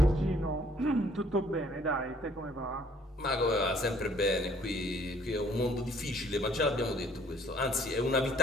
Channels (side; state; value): both; normal; correlation 0.60